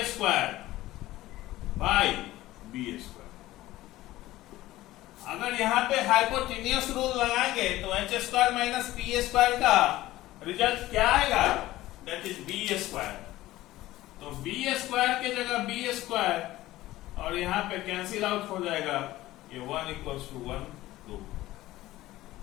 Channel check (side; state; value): right; quieter; 16.4 dB